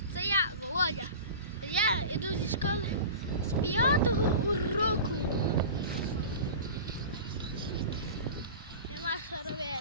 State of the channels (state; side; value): inverted; both; correlation -0.33